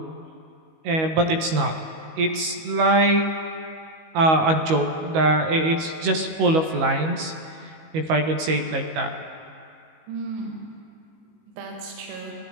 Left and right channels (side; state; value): left; late; 19 ms